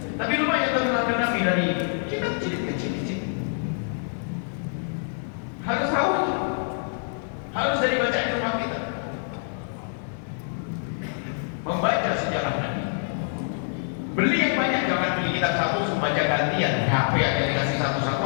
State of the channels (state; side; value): silent; right; digital silence